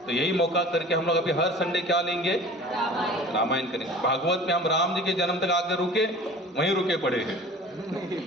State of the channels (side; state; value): both; normal; correlation 0.42